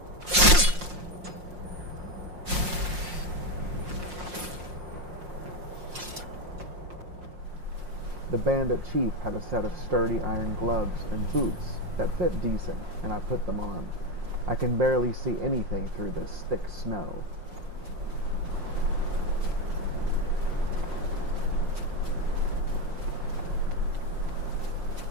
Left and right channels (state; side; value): late; left; 5.6 ms